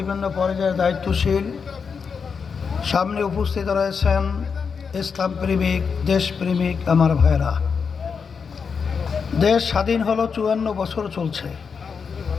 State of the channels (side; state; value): right; quieter; 5.9 dB